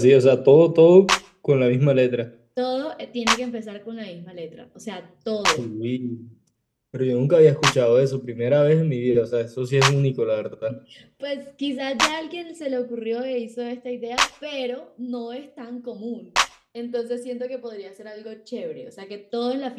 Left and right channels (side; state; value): both; identical; correlation 1.00